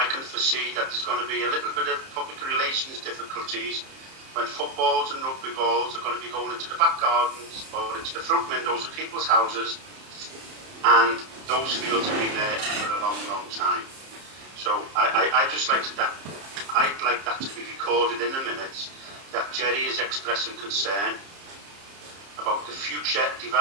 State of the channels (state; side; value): late; left; 30 ms